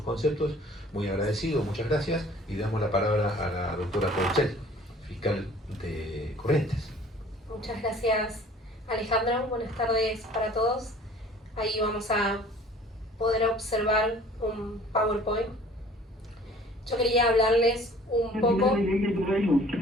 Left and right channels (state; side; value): normal; both; correlation 0.51